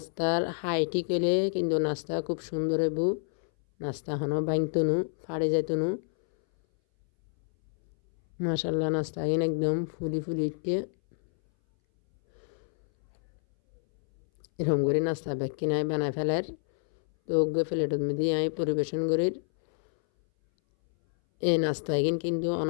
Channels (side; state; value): right; silent; 59 dB below the other